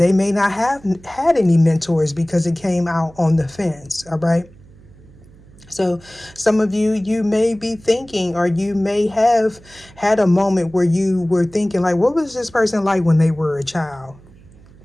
may not have had any mentors because it came out on the fence. All right. So some of you, you may be thinking, or you may have had a moment where you were thinking like, what was this person like when they were a child?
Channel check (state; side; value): noise; right; hum, 24 dB below the sound